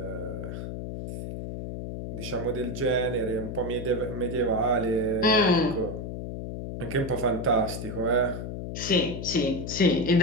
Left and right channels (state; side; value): noise; left; hum, 6 dB below the sound